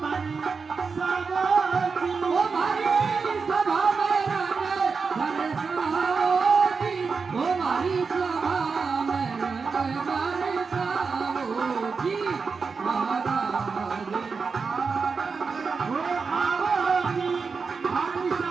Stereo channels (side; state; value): left; quieter; 5.0 dB